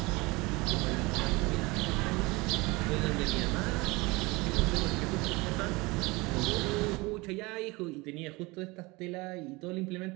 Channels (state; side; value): quieter; left; 23.8 dB